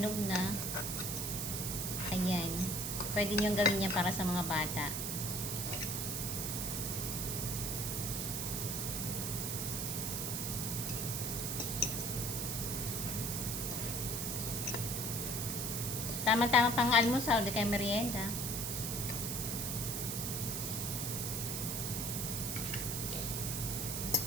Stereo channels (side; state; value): right; noise; hiss, 2 dB below the sound